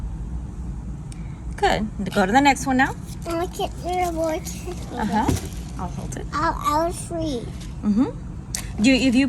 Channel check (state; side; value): identical; both; correlation 1.00